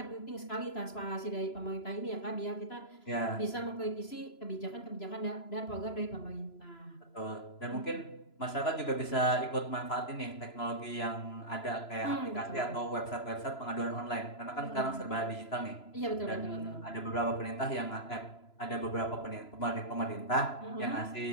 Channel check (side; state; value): right; late; 3.0 ms